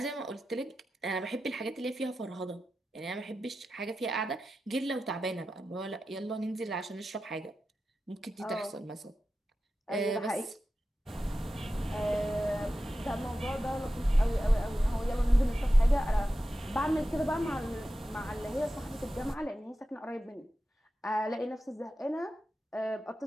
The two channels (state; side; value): normal; both; correlation 0.92